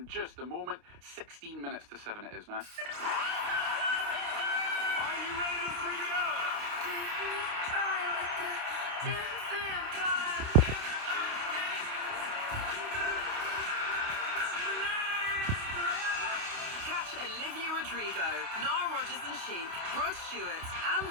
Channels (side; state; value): left; late; 29 ms